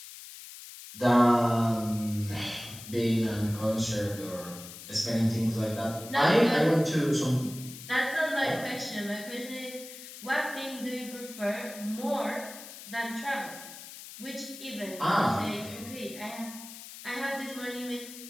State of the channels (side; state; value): left; noise; hiss, 14 dB below the sound